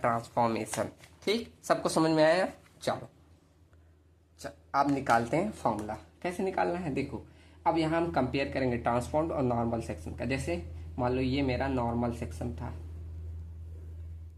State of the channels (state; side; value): identical; both; correlation 1.00